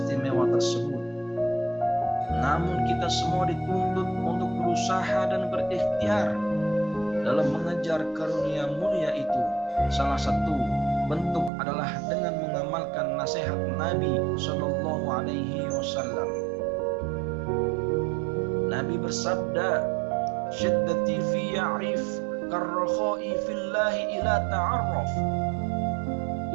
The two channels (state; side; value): drops out; left; at 11.5 s